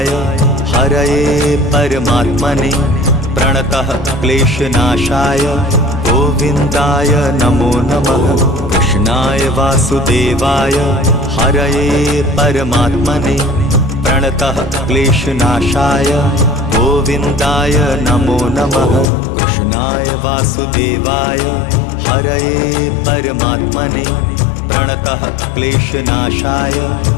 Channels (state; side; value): drops out; right; at 19.1 s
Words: हरये परमात्मने प्रणतः क्लेशनाशाय गोविन्दाय नमो नमः। कृष्णाय वासुदेवाय हरये परमात्मने प्रणतः क्लेशनाशाय गोविन्दाय नमो नमः। कृष्णाय वासुदेवाय हरये परमात्मने प्रणतः क्लेशनाशाय